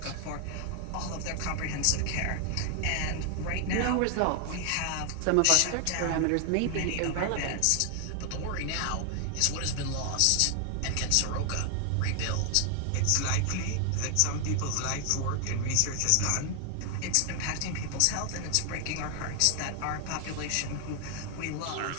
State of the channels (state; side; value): different; both; correlation 0.00